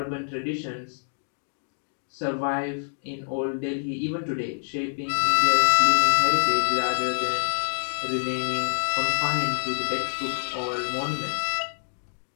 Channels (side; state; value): right; silent; digital silence